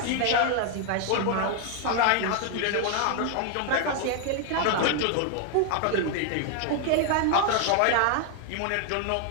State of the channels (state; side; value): different; both; correlation 0.00